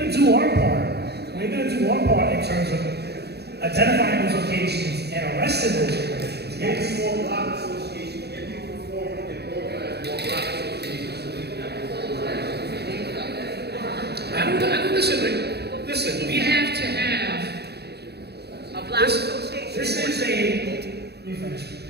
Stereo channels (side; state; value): left; late; 0.48 ms